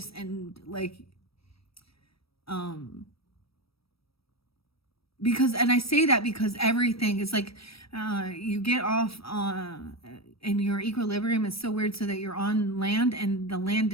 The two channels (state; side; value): late; right; 0.76 ms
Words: and like, because, and I say that because everything is like, you get off and your equilibrium is so weird so that you're on land and the